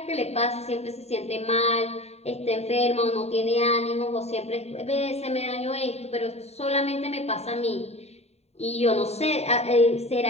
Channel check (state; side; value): late; right; 0.31 ms